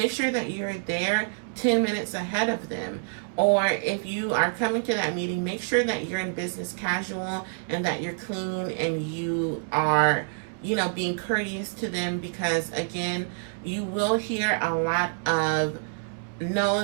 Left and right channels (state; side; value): silent; left; digital silence